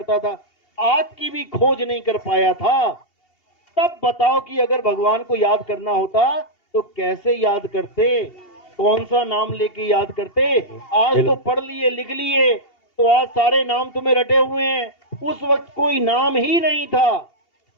था, आग की भी खोज नहीं कर पाया था, तब बताओ कि अगर भगवान को याद करना होता तो कैसे याद करते, कौन सा नाम लेके याद करते? आज तो पढ़ लिए लिख लिए तो आज सारे नाम तुम्हें रटे हुए हैं, उस वक्त कोई नाम ही नहीं था,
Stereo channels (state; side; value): late; right; 2.8 ms